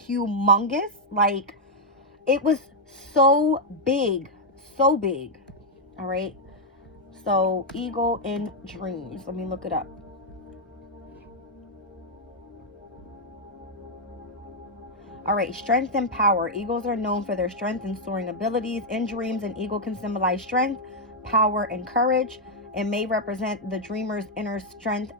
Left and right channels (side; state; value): both; normal; correlation -0.02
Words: humongous, like it was so big. All right. So eagle in dreams. Let me look it up. All right, strength and power. Eagles are known for their strength and soaring abilities. In dreams, an eagle can symbolize strength, power, and courage. It may represent the dreamer's inner strength